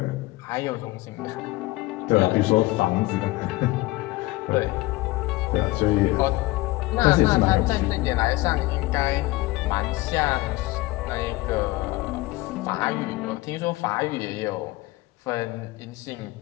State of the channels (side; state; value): right; quieter; 20.0 dB